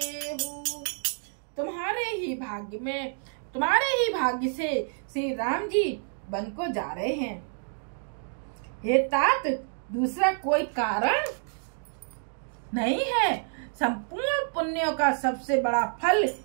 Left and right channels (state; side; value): silent; left; digital silence